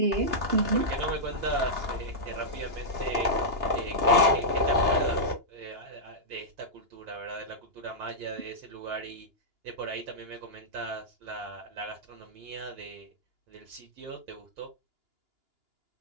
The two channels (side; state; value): left; late; 2.9 ms